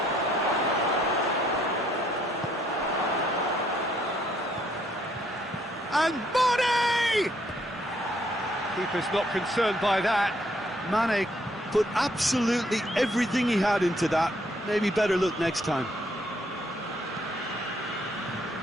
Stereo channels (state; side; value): normal; both; correlation 0.69